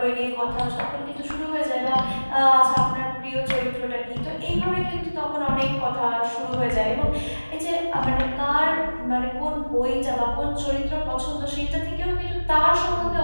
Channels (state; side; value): inverted; both; correlation -1.00